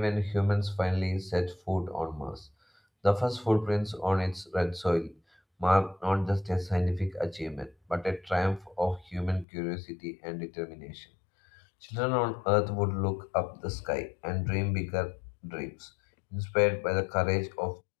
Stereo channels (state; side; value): drops out; right; at 9.5 s